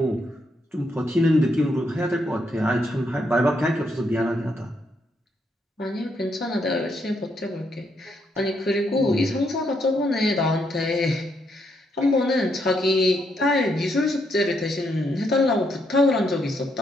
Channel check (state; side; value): normal; both; correlation 0.76